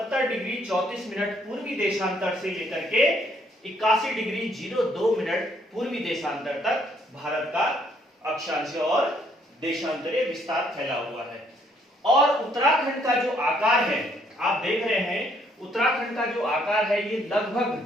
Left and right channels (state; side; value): normal; both; correlation 0.67